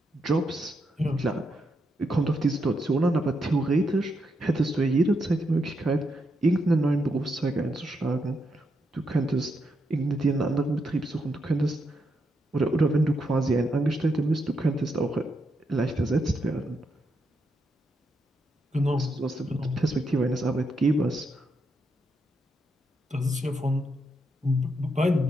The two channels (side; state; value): both; normal; correlation 0.81